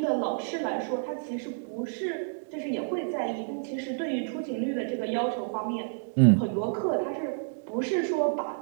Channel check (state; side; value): silent; left; digital silence